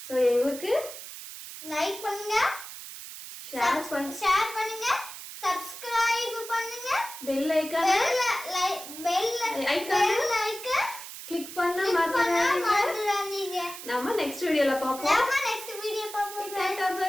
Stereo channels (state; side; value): noise; right; hiss, 12 dB below the sound